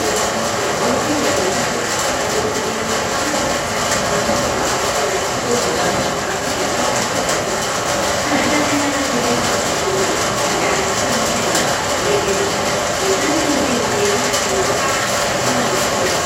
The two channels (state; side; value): identical; both; correlation 1.00